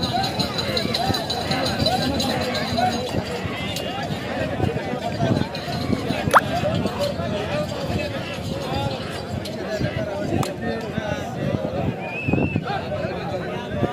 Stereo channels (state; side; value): identical; both; correlation 1.00